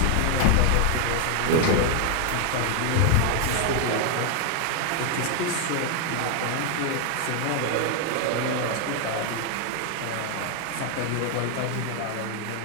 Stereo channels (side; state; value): both; different; correlation 0.01